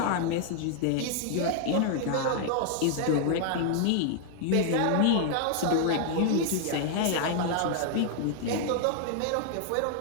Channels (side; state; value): both; different; correlation 0.00